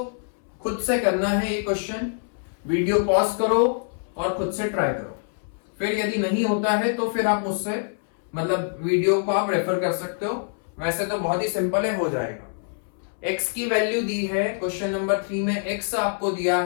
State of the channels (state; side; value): silent; right; 61 dB below the other